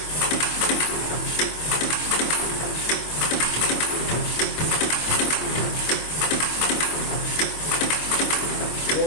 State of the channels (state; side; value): late; right; 25 ms